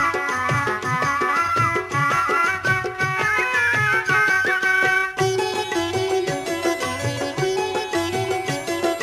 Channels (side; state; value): both; identical; correlation 1.00